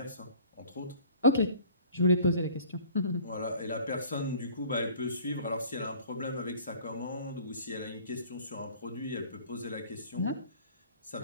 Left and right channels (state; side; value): inverted; both; correlation -0.49